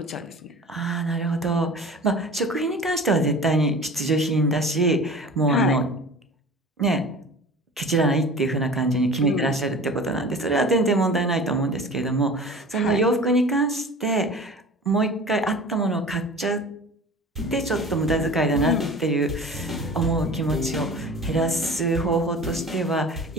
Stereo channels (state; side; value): normal; both; correlation 0.39